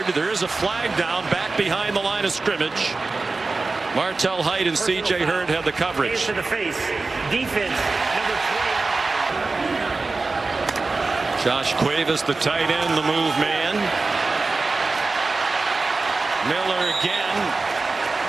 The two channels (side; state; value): left; quieter; 3.7 dB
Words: There is a flag down back behind the line of scrimmage. Martell Height and C.J. Hurd have the coverage. Face to the face. Defense, number 20. Josh Cuevas, the tight end, the move man. Miller again.